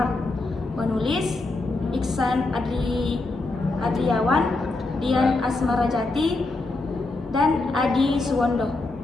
Penulis Iksan Adriawan, Dian Asmarajati, dan Adi Suwondo.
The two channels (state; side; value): quieter; right; 3.2 dB